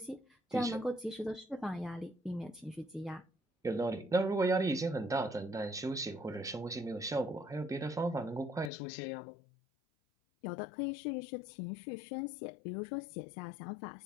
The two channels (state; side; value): drops out; right; at 8.7 s